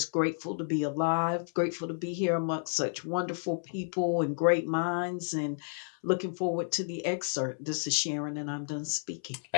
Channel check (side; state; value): right; silent; 57 dB below the other